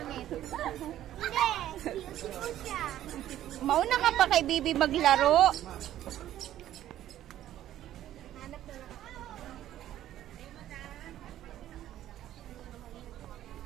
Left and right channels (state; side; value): quieter; left; 12.6 dB